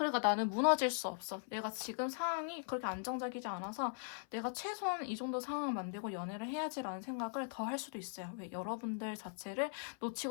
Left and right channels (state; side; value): silent; right; 51 dB below the other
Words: 나는 무너질 수 없어. 내가 지금 상황이 그렇게 안정적이지 않아서 내가 최소한 이 정도 상황을 만들고 연애를 해야지라는 생각을 더 할 수도 있어요. 왜? 여러분들 자체를